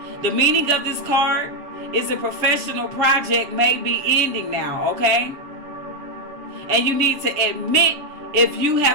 The meaning of this card is a professional project may be ending now, okay? And you need to admit if you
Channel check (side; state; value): left; late; 7.0 ms